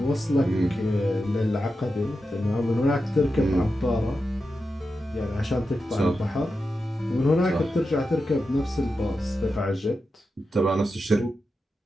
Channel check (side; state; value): both; normal; correlation 0.90